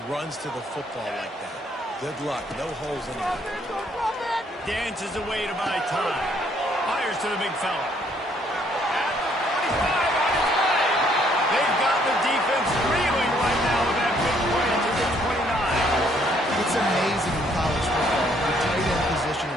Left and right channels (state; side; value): normal; both; correlation 0.66